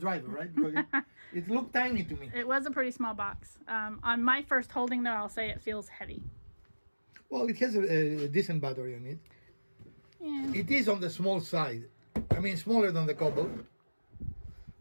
right? Because it looked tiny to me. It was a pretty small box. On my first holding, though, I'll say it feels heavy. Well, it has a decent battery on it. Yeah. It is on the small side. I mean, smaller than the Cobalt.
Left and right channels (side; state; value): both; inverted; correlation -1.00